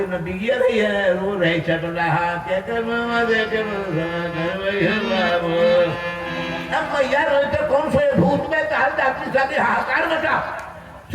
में बिगिया रही है, रो रही चट रहा मैया रोए तो कौन से भूत में ताल डाक्टरी साथी हाहाकार मचा।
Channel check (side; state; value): both; identical; correlation 1.00